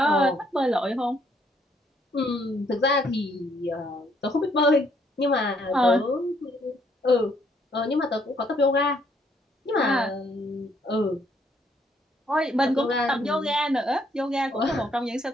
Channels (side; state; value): both; normal; correlation 0.69